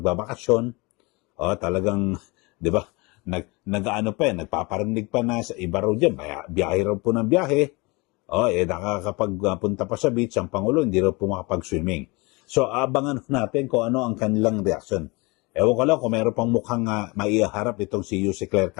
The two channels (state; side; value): quieter; right; 26.1 dB